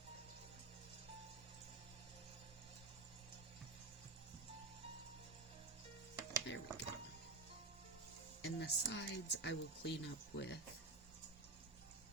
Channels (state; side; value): quieter; left; 3.4 dB